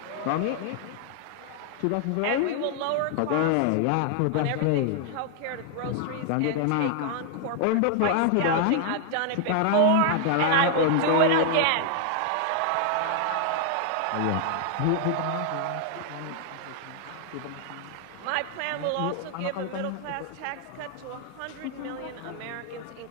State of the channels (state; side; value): different; both; correlation 0.00